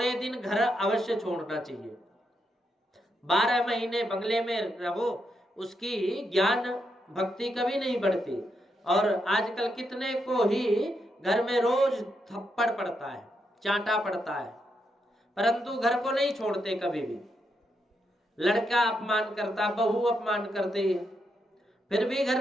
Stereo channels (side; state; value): both; normal; correlation 0.82